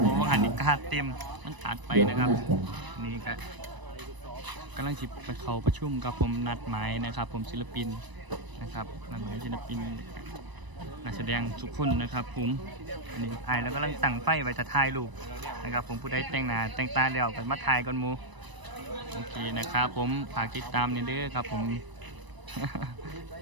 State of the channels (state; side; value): late; left; 1.0 ms